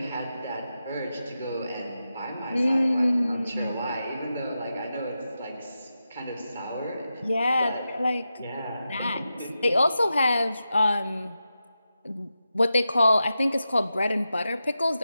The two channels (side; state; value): both; inverted; correlation -0.90